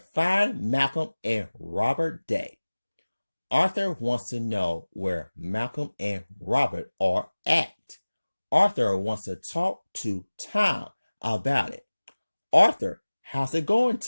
Malcolm and Robert Day. Arthur wants to know where Malcolm and Robert are at. Arthur wants to talk to Tom about it. Arthur, how's it going,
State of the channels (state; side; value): inverted; both; correlation -1.00